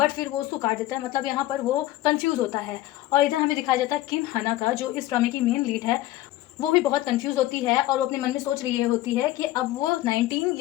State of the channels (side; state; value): right; quieter; 15.7 dB